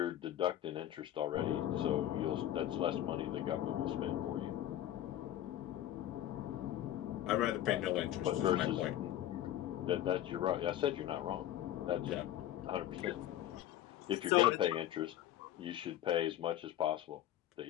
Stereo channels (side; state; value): right; quieter; 12.5 dB